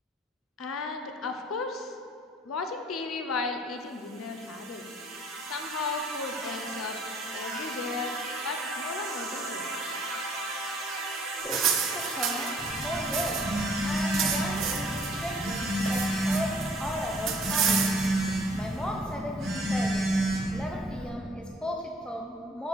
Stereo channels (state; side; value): normal; both; correlation 0.58